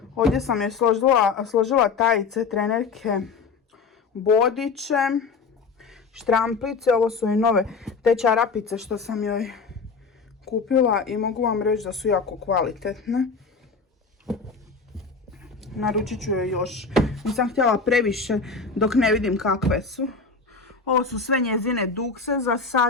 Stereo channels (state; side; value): quieter; right; 4.8 dB